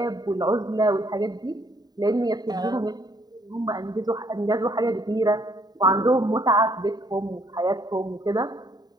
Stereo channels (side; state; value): left; late; 0.19 ms